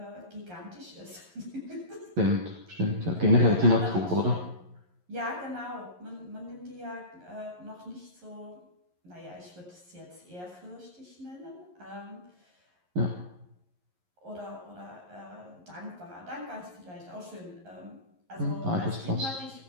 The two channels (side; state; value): left; late; 11 ms